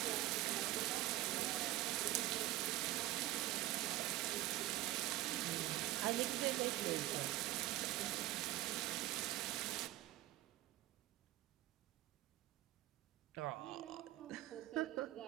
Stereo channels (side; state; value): left; quieter; 16.0 dB